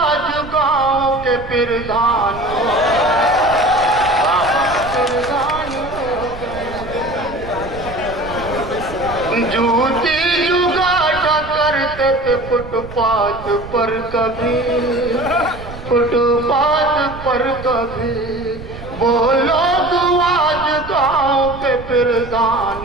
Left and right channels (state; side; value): noise; right; rumble, 13 dB below the sound